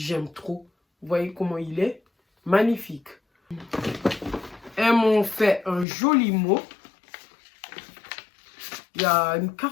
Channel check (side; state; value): right; drops out; at 5.9 s